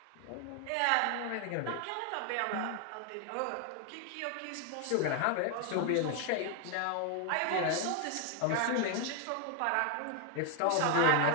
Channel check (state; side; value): different; both; correlation 0.00